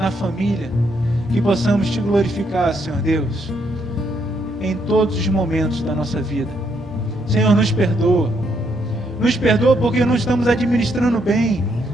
família, que possamos Te glorificar, Senhor Deus, em todos os momentos da nossa vida. Senhor, nos perdoa porque não estamos administrando bem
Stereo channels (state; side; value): normal; both; correlation 0.74